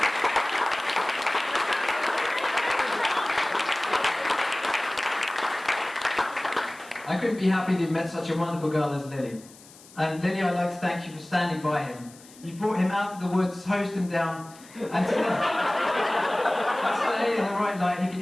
I couldn't be happy that you met such a wonderful girl as Lili. And Lili, I'd like to thank you for standing by him. You brought him out of the woods, hosed him down, and today, in the right light, he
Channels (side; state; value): left; noise; hiss, 22 dB below the sound